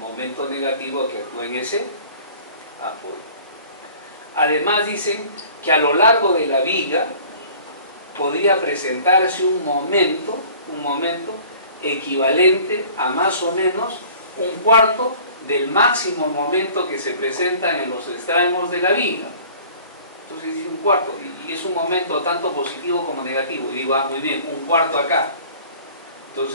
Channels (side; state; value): both; inverted; correlation -0.48